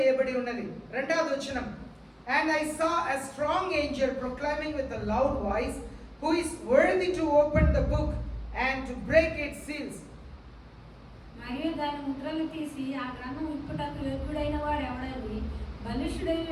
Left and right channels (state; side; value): identical; both; correlation 1.00